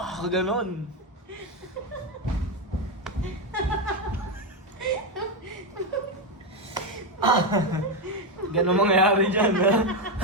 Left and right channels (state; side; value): normal; both; correlation 0.08